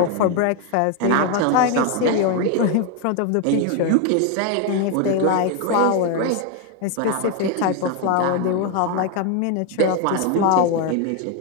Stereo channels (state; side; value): different; both; correlation 0.01